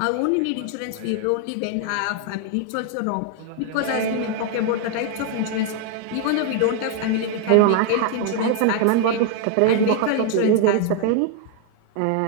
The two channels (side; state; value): both; different; correlation 0.00